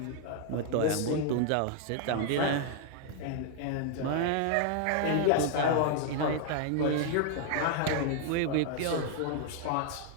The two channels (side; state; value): both; different; correlation 0.00